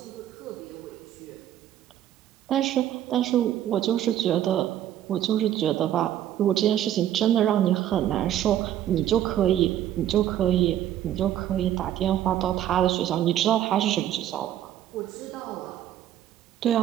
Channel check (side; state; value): left; quieter; 11.7 dB